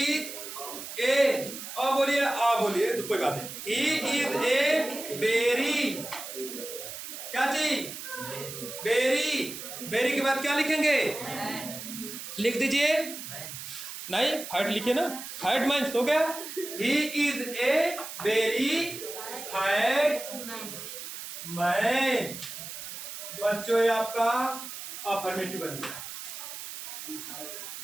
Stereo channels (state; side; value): noise; right; hiss, 9 dB below the sound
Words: अब बोलिए, बोलिए तो कोई बात नहीं। He is a berry. क्या चीज? बेरी। बेरी के बाद क्या लिखेंगे? लिख दीजिए। नहीं, फैट लिखिए ना। फैट मैन हो गया। He is a berry fat man. बच्चों, ये आपका अफर्मेटिव बन गया।